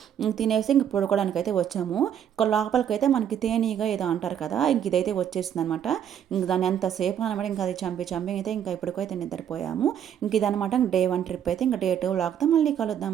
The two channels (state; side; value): quieter; left; 9.3 dB